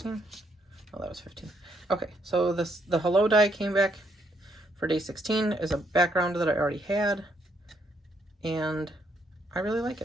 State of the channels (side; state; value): both; normal; correlation 0.73